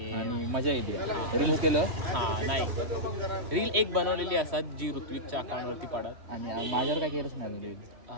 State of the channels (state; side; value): late; left; 3.1 ms